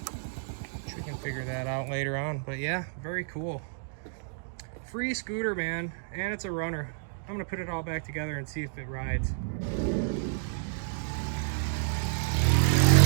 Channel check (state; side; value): silent; left; digital silence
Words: which we can figure that out later on. But yeah, very cool. Free scooter, man, and it's a runner. I'm gonna put it all back together and see if it rides.